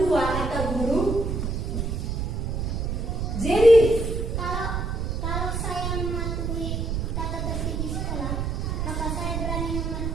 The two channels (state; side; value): noise; right; rumble, 1 dB below the sound